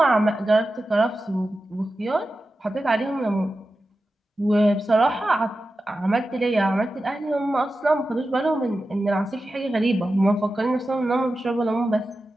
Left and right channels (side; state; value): both; normal; correlation 0.92